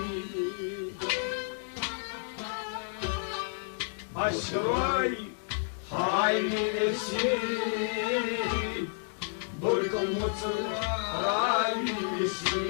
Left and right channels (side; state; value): right; silent; digital silence